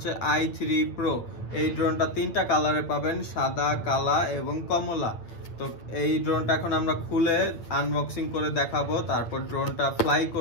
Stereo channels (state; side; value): late; right; 8.8 ms